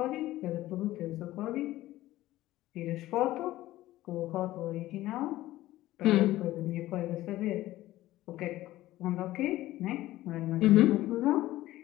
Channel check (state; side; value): quieter; right; 15.9 dB